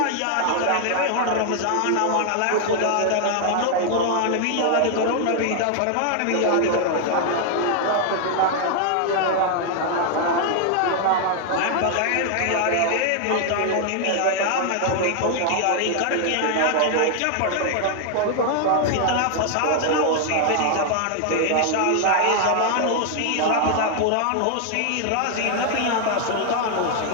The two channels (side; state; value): both; different; correlation 0.00